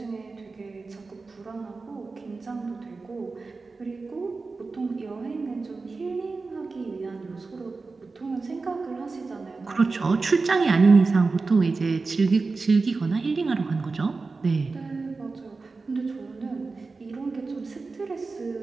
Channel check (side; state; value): left; quieter; 4.0 dB